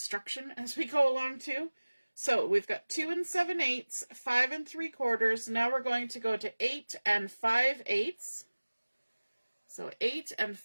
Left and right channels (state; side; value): inverted; both; correlation -1.00